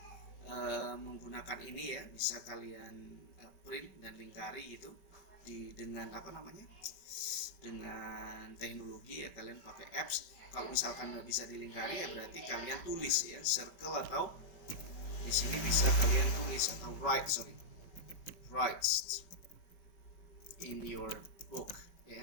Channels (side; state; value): right; late; 5.3 ms